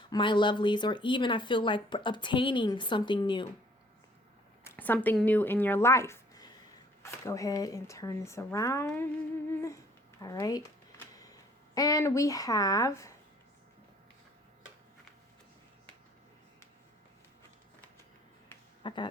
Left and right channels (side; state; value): both; normal; correlation 0.58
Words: my lovelies, or even I feel like obtaining something new in your life. Let's go ahead and turn this around. All right. And we have I